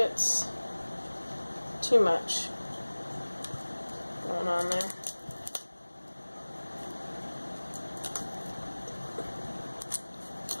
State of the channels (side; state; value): both; inverted; correlation -1.00